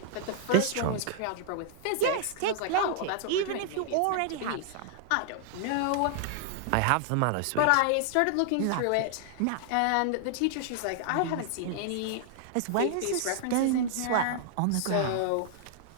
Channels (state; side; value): different; both; correlation -0.01